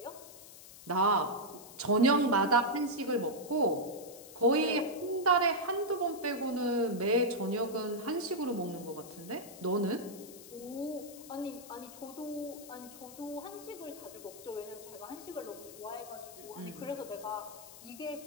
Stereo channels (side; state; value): left; noise; hiss, 17 dB below the sound